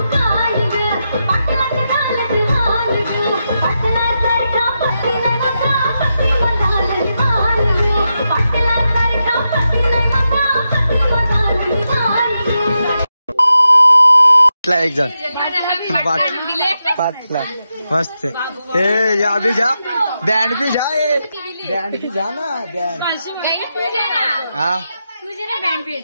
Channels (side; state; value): both; inverted; correlation -0.87